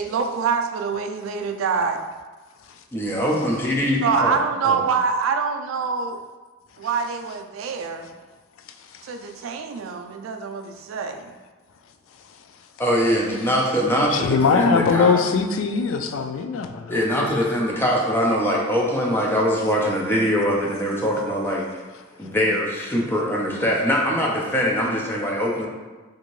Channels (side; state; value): both; normal; correlation 0.24